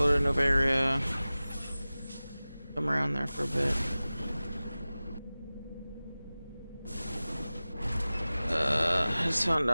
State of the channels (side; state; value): both; inverted; correlation -0.97